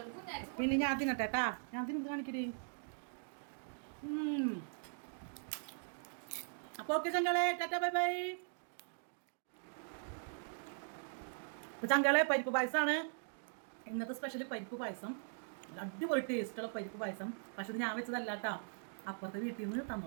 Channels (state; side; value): silent; left; digital silence